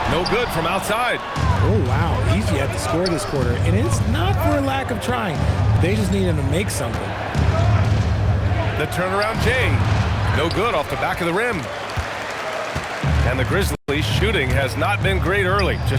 No good from outside. Oh, wow. Easy at the score this quarter. And it's not for a lack of trying. They just need him to make something. The turnaround Jay. No good off the back of the rim. And the Grizzlies shooting has not been great early.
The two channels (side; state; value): both; identical; correlation 1.00